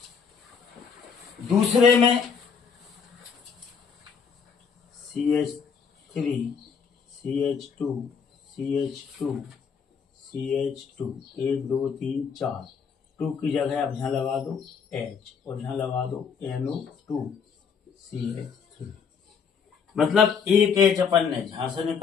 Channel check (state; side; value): quieter; right; 6.3 dB